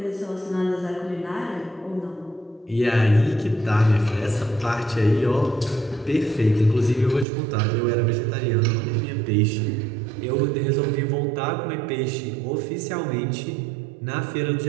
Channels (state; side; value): drops out; left; at 7.2 s